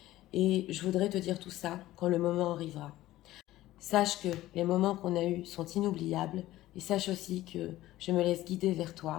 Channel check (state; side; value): quieter; right; 15.7 dB